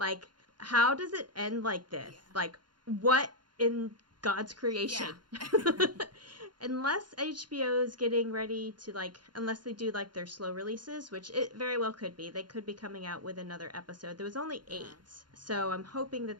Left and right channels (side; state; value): left; late; 0.71 ms